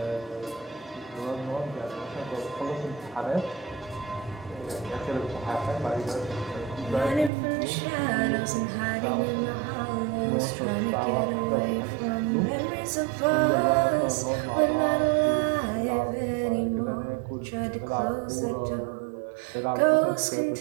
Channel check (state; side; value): drops out; left; at 7.3 s